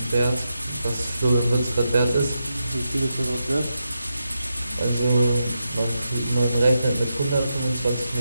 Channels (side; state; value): both; inverted; correlation -0.87